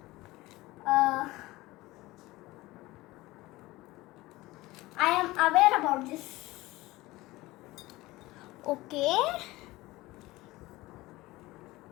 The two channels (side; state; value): right; quieter; 19.3 dB